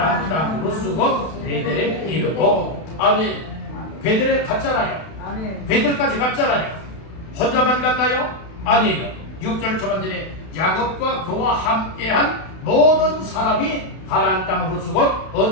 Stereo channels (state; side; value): late; right; 32 ms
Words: 땅으로 쓰고 베델에 이르고. 아멘. 베델에 갔잖아요. 베델까지 갔잖아요. 혼자만 갔나요? 아니에요. 6절 초반전에 야곱과 그와 함께한 모든 사람이 가나안 땅으로 쓰고